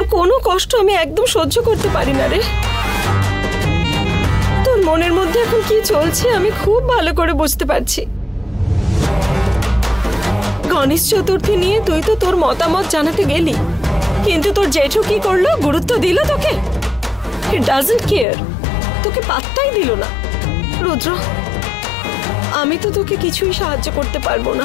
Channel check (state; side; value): drops out; right; at 18.2 s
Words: কোনো কষ্ট আমি একদম সহ্য করতে পারি না রে। তোর মনের মধ্যে এখন কি চলছে আমি খুব ভালো করে বুঝতে পারছি। গণেশ চতুর্থী নিয়ে তুই তো তোর মতামত জানাতে গেলি, কিন্তু তোর জেঠু কি করলো? গুরুত্ব দিল তোকে? হি ডাজন্ট কেয়ার, তোকে পাত্তাই দিল না। রুদ্র, আমি তো তোকে কিছুই সাহায্য করতে পারবো